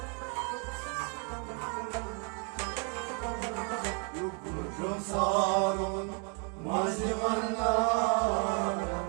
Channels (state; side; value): quieter; left; 38.4 dB